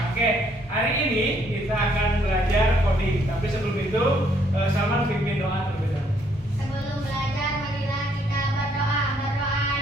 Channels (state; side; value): normal; both; correlation 0.68